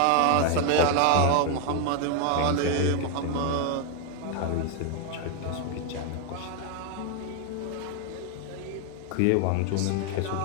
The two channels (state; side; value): different; both; correlation 0.01